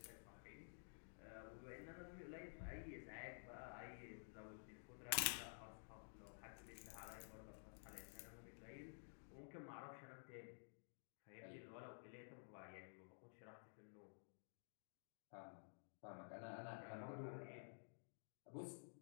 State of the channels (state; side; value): silent; right; digital silence